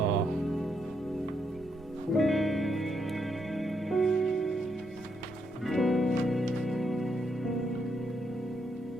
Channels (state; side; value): noise; left; hum, 29 dB below the sound